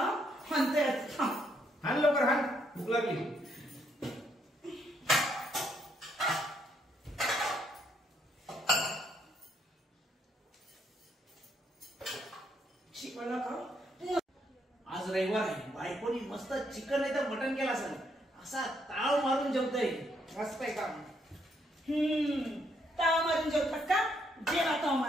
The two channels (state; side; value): normal; both; correlation 0.73